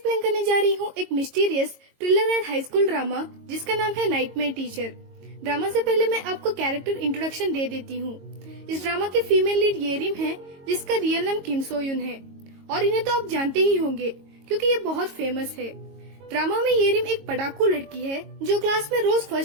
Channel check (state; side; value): late; left; 22 ms